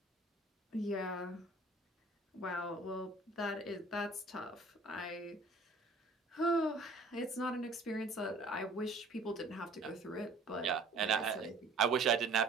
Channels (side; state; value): left; quieter; 3.1 dB